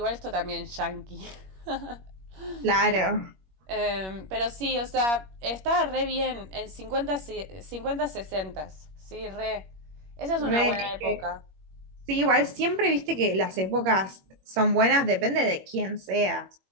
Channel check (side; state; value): left; late; 21 ms